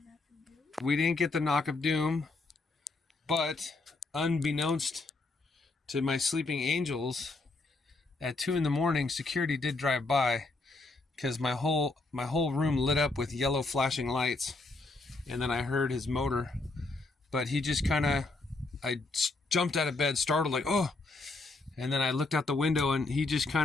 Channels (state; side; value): quieter; right; 3.3 dB